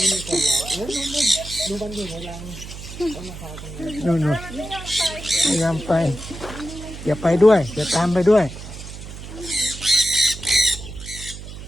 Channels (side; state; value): right; noise; hum, 12 dB below the sound